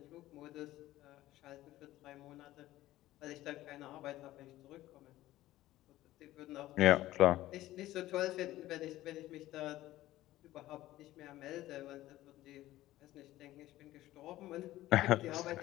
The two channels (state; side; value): quieter; right; 15.6 dB